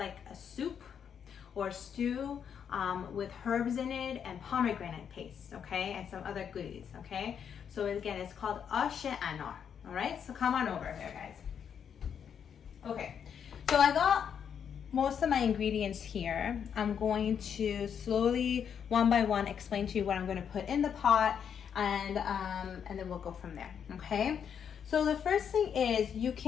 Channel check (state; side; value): quieter; right; 7.8 dB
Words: a soup or stew with herbs in it and pomegranate paste, okay, and some other goodies, okay? So again, it's called Anar, all right? So come on over here, guys. Okay, so I got most of my ingredients here. I'm going to slowly, one by one, explain to you what I'm going to put in the pot, and then we'll go from there, okay? So the first thing is you